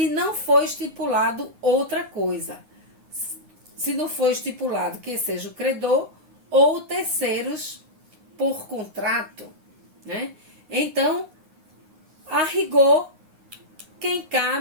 não for estipulado outra coisa. Se não for estipulado que seja o credor ou terceiros por contrato, né? Então, a rigor, quem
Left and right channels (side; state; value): left; late; 9.6 ms